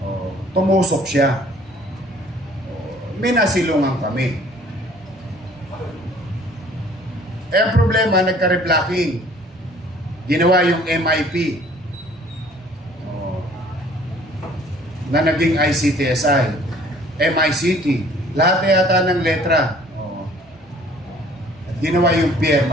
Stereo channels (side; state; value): both; normal; correlation 0.55